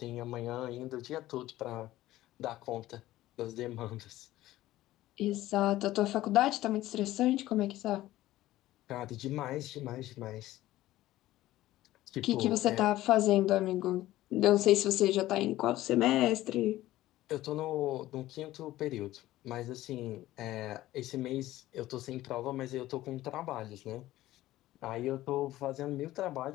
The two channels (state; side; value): quieter; right; 15.6 dB